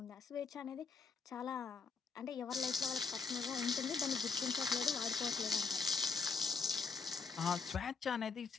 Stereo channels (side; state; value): right; quieter; 5.1 dB